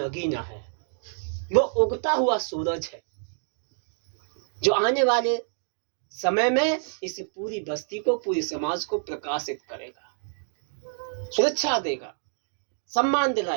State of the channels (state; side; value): silent; left; digital silence